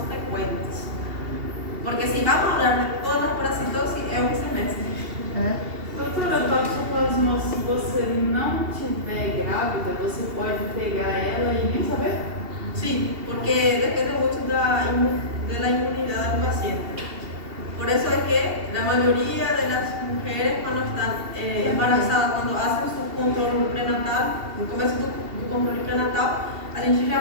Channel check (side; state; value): left; late; 2.7 ms